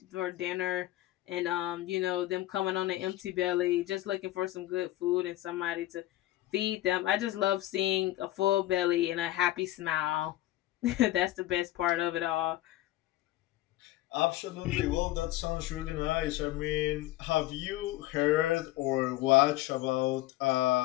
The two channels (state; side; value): quieter; right; 16.0 dB